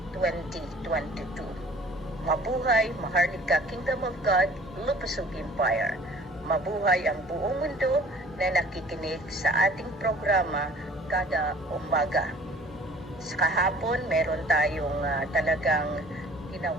2022. Mabuhay, Maharlika Kingdom of God, Lupusog Empire. Mabuhay ang buong mundo na nakikinig sa ating programa kada umaga. Sa kahapon, meron tayong talagang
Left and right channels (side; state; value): both; normal; correlation 0.50